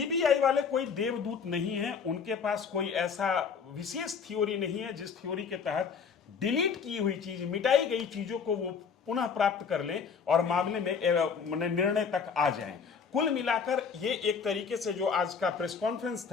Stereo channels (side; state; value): right; quieter; 6.1 dB